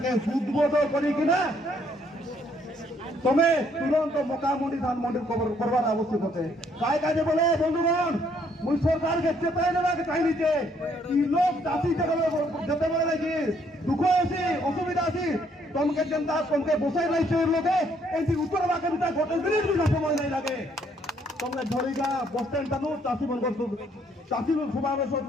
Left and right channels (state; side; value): normal; both; correlation 0.68